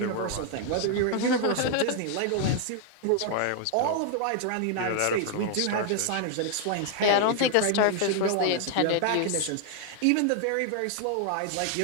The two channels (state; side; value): different; both; correlation 0.00